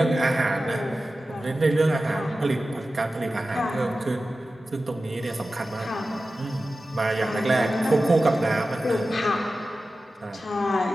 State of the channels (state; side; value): normal; both; correlation 0.94